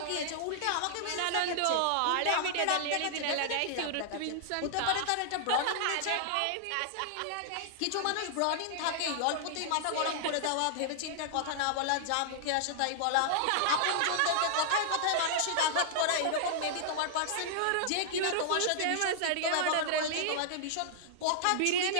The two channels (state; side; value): different; both; correlation -0.01